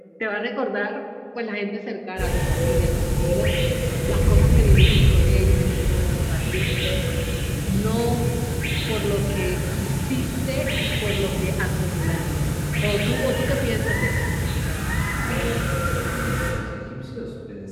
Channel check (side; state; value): both; identical; correlation 1.00